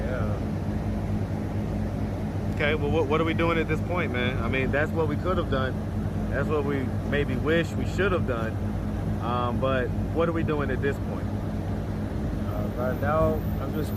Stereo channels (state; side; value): identical; both; correlation 1.00